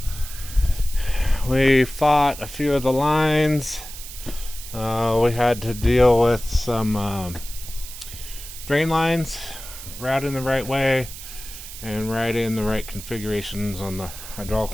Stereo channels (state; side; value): noise; right; hiss, 12 dB below the sound